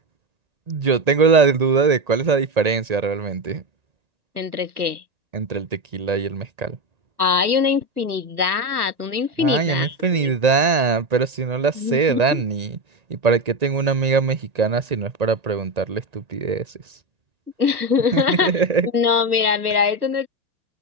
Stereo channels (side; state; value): left; late; 1.3 ms